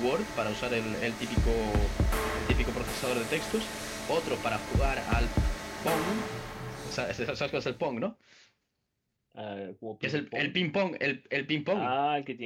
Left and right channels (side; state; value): both; identical; correlation 1.00